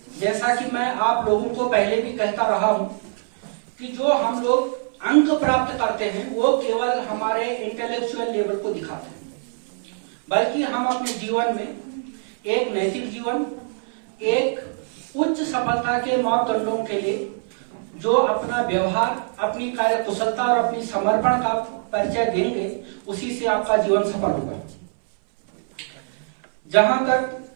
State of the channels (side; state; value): left; silent; 60 dB below the other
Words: जैसा कि मैं आप लोगों को पहले भी कहता रहा हूं कि जो हम लोग अंक प्राप्त करते हैं वो केवल हमारे इंटेलेक्चुअल लेवल को दिखाते हैं, बल्कि हम अपने जीवन में एक नैतिक जीवन, एक उच्च सफलता के मापदंडों के लिए जो अपना व्यवहार, अपनी कार्य कुशलता और अपनी समर्पण का परिचय देंगे, उसी से आपका जीवन सफल होगा। जहां तक